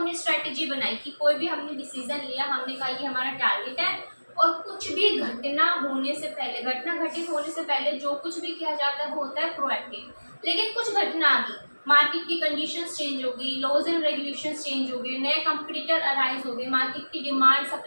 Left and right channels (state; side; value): inverted; both; correlation -1.00